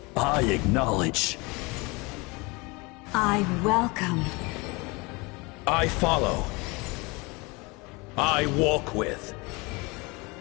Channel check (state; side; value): quieter; right; 26.3 dB